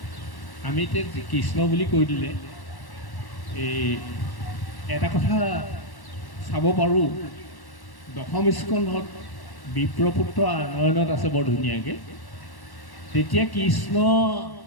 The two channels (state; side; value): late; right; 1.1 ms